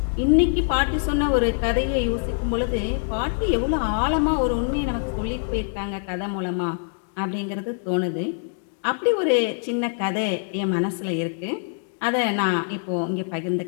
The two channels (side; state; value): right; silent; digital silence